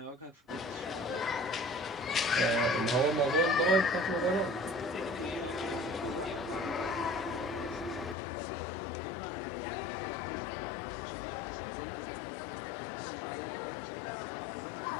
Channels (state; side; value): drops out; right; at 8.2 s